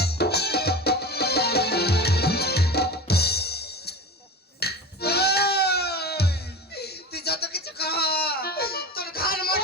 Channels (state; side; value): normal; both; correlation 0.30